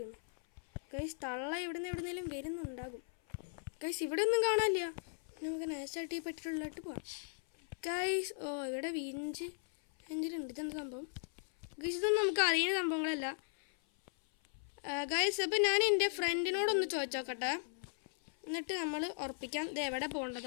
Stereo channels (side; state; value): right; silent; 53 dB below the other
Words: ഗൈസ് തള്ള എവിടുന്നേലും വരുന്നുണ്ടാകും. ഗൈസ് ഇവിടെ ഒന്നും കാണാനില്ല. നമുക്ക് നൈസായിട്ട് ഈ പെട്ടിലുള്ളിലോട്ട് പോവാം ഗൈസ്. ഇവിടെ എഞ്ചിനുണ്ട്. ഇതെന്താ സംഭവം ഗൈസ്? ഇതൊന്നും നമുക്ക് അറിയുന്ന സംഭവങ്ങളല്ല. ഗൈസ് അപ്പോൾ ഞാൻ എൻ്റെ ഫ്രണ്ടിനോടൊന്ന് ചോദിച്ചോക്കട്ടെ, എന്നിട്ട് നമ്മൾ ഉറപ്പിക്കാം ഇത് എവിടെ